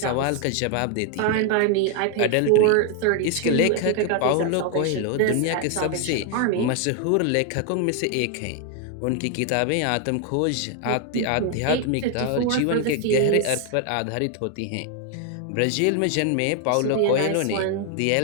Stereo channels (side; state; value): both; different; correlation 0.00